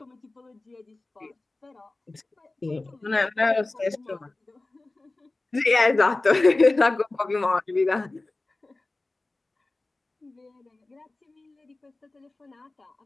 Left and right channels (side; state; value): right; quieter; 3.1 dB